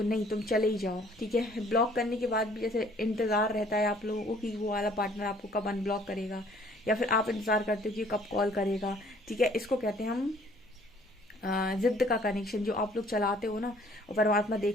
नहीं तुम चले ही जाओ, ठीक है। ब्लॉक करने के बाद भी जैसे इंतजार रहता है आप लोगों को कि वो वाला पार्टनर आपको कब अनब्लॉक करेगा, या फिर आप इंतजार करते हो कि कब कॉल करेगा, ठीक है। इसको कहते हैं हम जिद्द का कनेक्शन, जो आप लोग चलाते हो ना, और परमात्मा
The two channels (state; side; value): normal; both; correlation 0.58